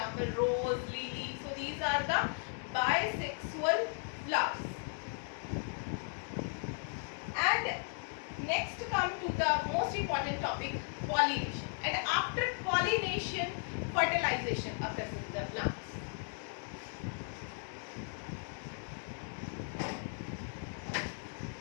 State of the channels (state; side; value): silent; right; 54 dB below the other